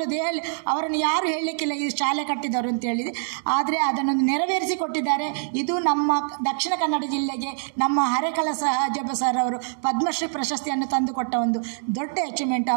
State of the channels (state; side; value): silent; left; digital silence